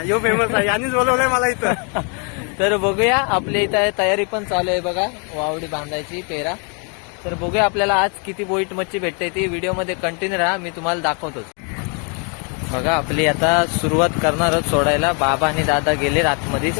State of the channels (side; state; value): right; quieter; 37.4 dB